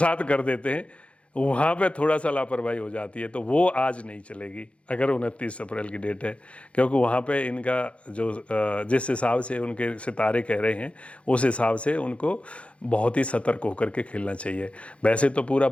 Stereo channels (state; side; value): late; right; 0.061 ms